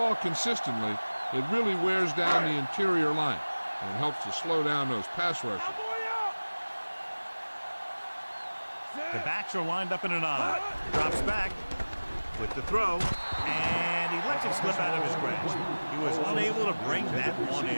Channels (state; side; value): inverted; both; correlation -1.00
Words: consistently, it really wears down the interior line, and it helps to slow down those pass rushers. The backs are lined up in an I. Drops back with the throw, and he lets it slip out of his grasp. He was unable to bring that one